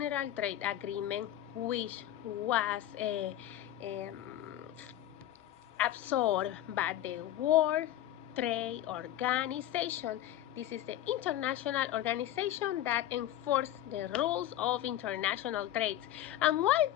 Trade Agreement, which was absorbed by the World Trade Organization. This is the international organization that enforces the rules of international trade. And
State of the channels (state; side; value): quieter; right; 13.0 dB